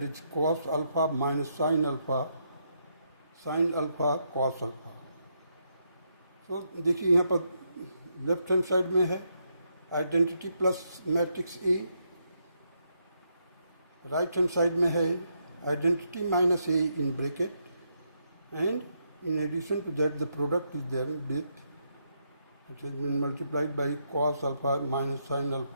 is cos alpha minus sin alpha cos alpha. तो देखिए यहाँ पर left hand side में है identity plus matrix A, right hand side में है identity minus A in bracket, and in addition to that the product is there with it has been multiplied by cos alpha minus sin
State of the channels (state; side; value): inverted; both; correlation -0.78